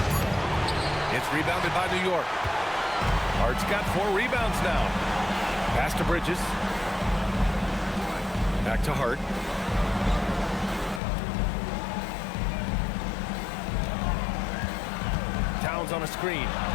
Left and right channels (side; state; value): right; drops out; at 11.0 s